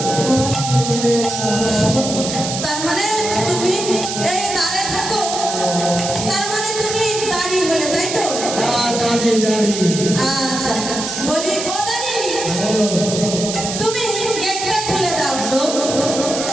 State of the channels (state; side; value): noise; right; hiss, 5 dB below the sound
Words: তার মানে তুমি এই দাঁড়ে থাকো, তার মানে তুমি দাঁড়িয়ে হলে, তাই তো? দাঁড়িয়ে দাঁড়িয়ে আচ্ছা, বলি ও দাঁড়িয়ে, তুমি গেটটা খুলে দাও,